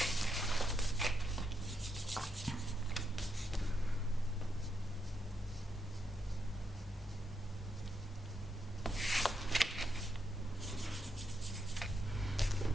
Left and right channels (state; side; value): normal; both; correlation 0.81